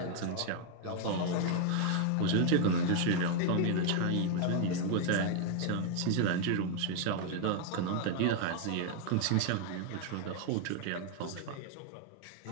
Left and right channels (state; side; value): different; both; correlation 0.00